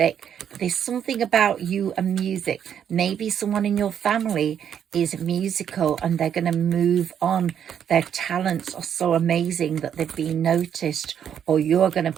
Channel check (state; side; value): quieter; left; 8.8 dB